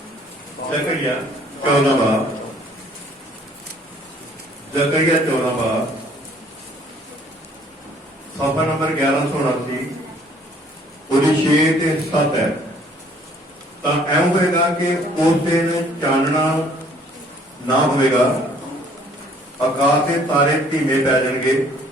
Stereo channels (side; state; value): both; normal; correlation 0.59